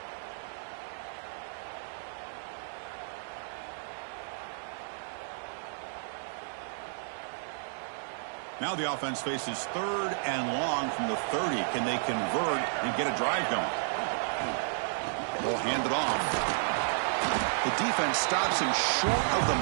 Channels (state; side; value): silent; left; 56 dB below the other